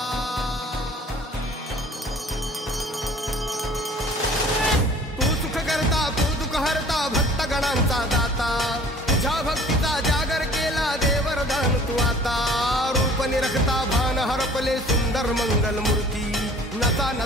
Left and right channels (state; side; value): normal; both; correlation 0.50